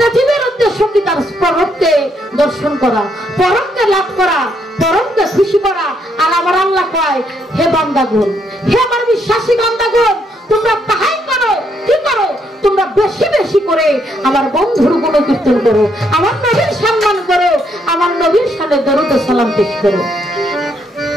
জীবের উদ্দেশ্য কি তার পরমকে দর্শন করা, পরমকে লাভ করা, পরমকে খুশি করা। আর আমার আল্লাহ কয়, হে বান্দাগণ, হে আমার বিশ্বাসী বান্দাগণ, তোমরা তাহাই করো। কি করো? তোমরা বেশি বেশি করে আমার বন্ধুর গুণ কীর্তন করো, আমার নবীর সম্মান করো, আমার নবীর সামনে দরুদ ও সালাম পেশ করো।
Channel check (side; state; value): both; normal; correlation 0.74